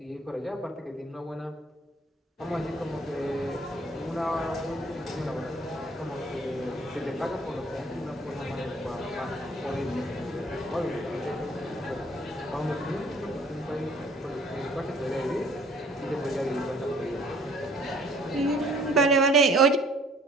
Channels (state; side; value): normal; both; correlation 0.57